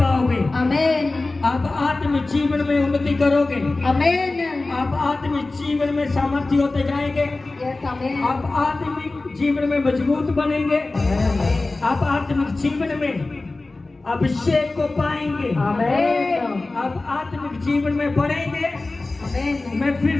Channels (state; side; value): quieter; right; 3.2 dB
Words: आमीन। आप आत्मिक जीवन में उन्नति करोगे, आमीन। आप आत्मिक जीवन में सामर्थ्य होते जाएंगे, यस आमीन। आप आत्मिक जीवन में मजबूत बनेंगे, आप आत्मिक जीवन में अभिषेक को पाएंगे, आमीन। आप आत्मिक जीवन में बढ़ेंगे। आमीन। मैं